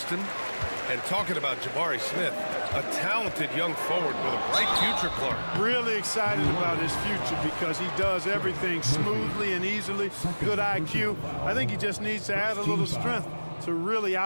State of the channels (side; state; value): both; inverted; correlation -1.00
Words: And talking about Jabari Smith, a talented young forward with a bright future, Clark. Really excited about his future because he does everything smoothly and easily. Good IQ. I think he just needs to add a little strength to really